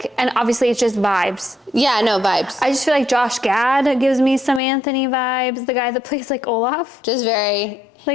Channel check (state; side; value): drops out; right; at 4.6 s